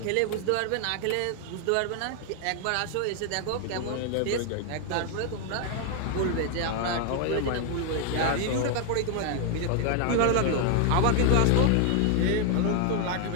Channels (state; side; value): different; both; correlation 0.00